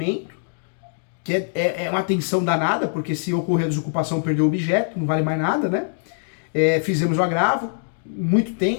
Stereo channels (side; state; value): right; silent; digital silence